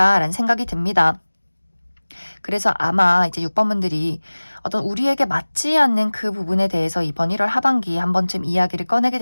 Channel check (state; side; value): inverted; both; correlation -1.00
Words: 생각이 듭니다. 그래서 아마 이제 6번 분들이 어떤 우리에게 맞지 않는 그 부분에 대해서 이번 1월 하반기에 한 번쯤 이야기를 꺼내게